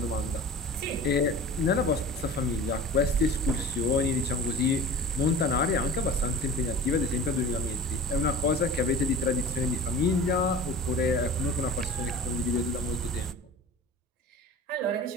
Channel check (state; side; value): normal; both; correlation 0.39